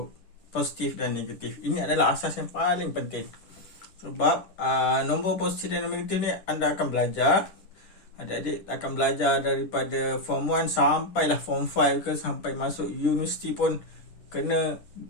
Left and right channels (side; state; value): right; late; 10 ms